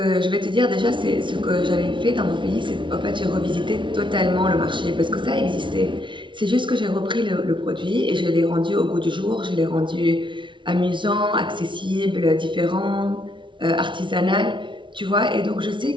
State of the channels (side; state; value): left; late; 0.24 ms